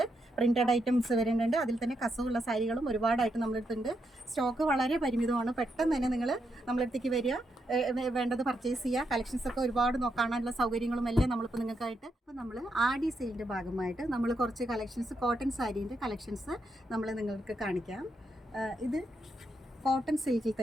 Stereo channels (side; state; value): both; normal; correlation 0.81